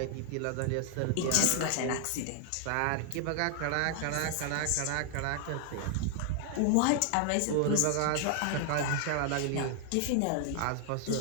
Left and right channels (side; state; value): both; different; correlation 0.00